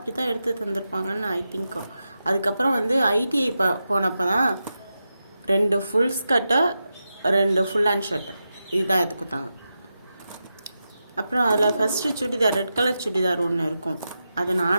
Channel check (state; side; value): inverted; both; correlation -0.89